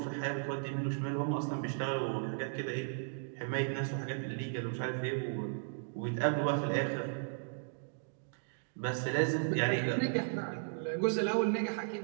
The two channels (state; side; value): silent; left; digital silence